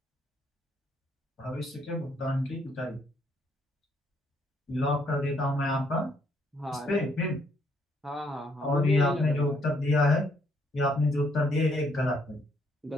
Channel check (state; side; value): normal; both; correlation 0.70